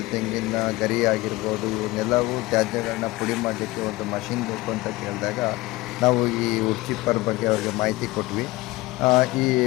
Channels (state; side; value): quieter; right; 20.2 dB